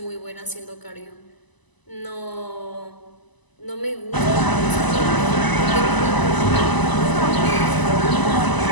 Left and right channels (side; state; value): right; late; 1.0 ms